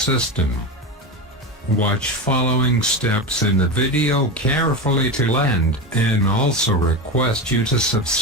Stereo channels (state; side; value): normal; both; correlation 0.20